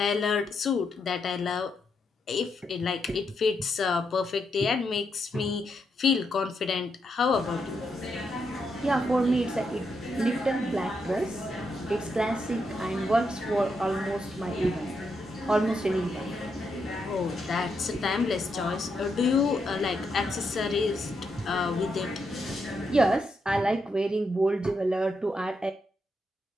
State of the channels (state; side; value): normal; both; correlation 0.81